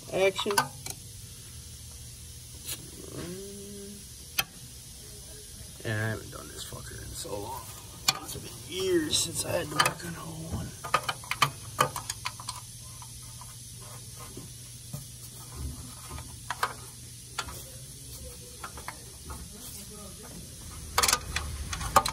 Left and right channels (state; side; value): identical; both; correlation 1.00